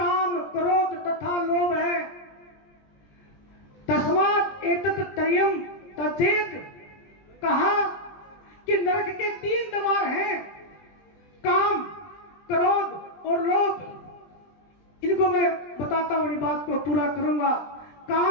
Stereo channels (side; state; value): right; late; 20 ms